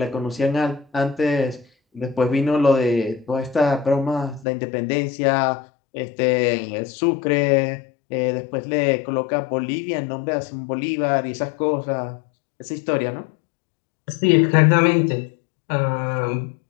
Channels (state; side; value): drops out; right; at 4.5 s